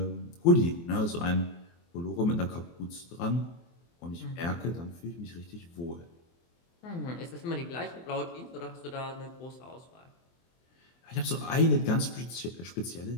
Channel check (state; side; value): late; right; 23 ms